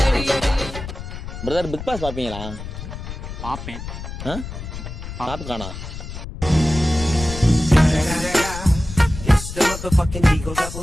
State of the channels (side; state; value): left; noise; rumble, 9 dB below the sound